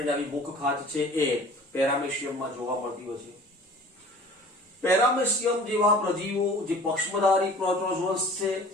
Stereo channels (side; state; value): both; normal; correlation 0.45